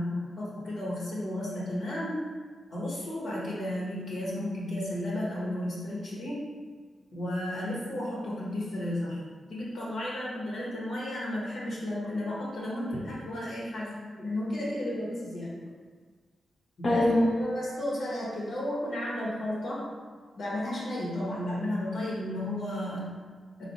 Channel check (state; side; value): normal; both; correlation 0.87